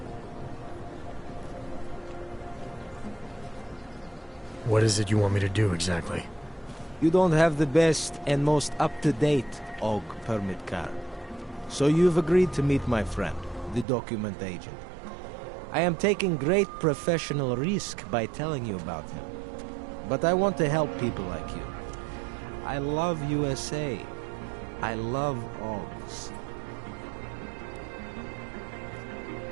What is it you want me to do exactly? You don't have the best and most up-to-date AvG permit card. So you've agreed to meet my friend, the document agent. I am taking great professional risk by telling you about him. But I want to help people like you. I love USA. I love AvGs.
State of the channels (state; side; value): drops out; left; at 13.9 s